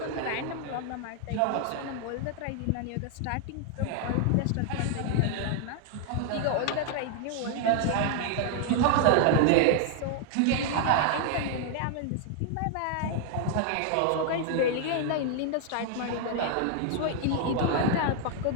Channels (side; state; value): both; different; correlation 0.00